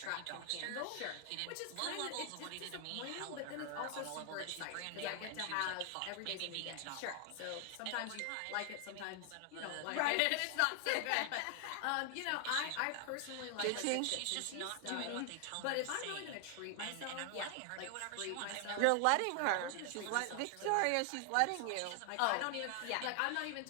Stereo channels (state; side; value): different; both; correlation 0.00